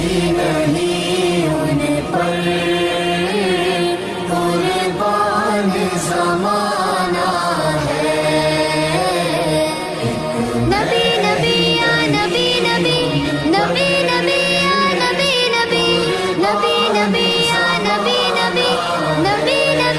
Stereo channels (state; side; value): identical; both; correlation 1.00